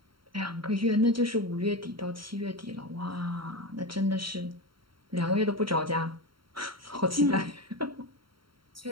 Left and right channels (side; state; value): left; late; 0.73 ms